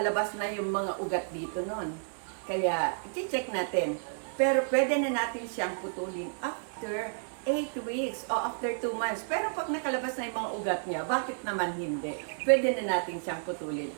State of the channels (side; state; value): left; silent; digital silence